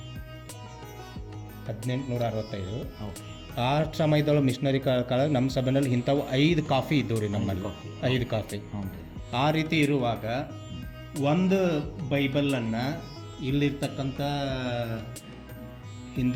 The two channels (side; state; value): both; identical; correlation 1.00